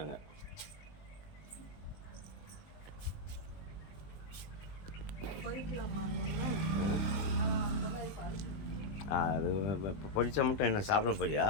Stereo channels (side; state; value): right; late; 20 ms